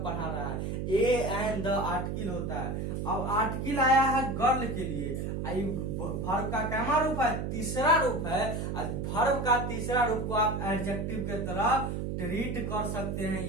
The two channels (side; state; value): right; noise; hum, 3 dB below the sound